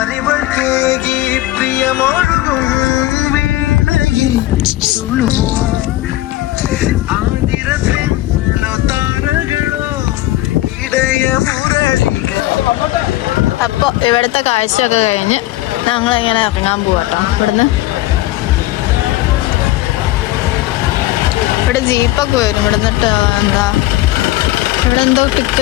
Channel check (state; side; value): quieter; right; 16.6 dB